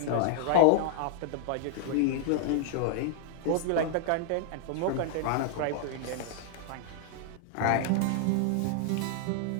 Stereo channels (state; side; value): different; both; correlation -0.01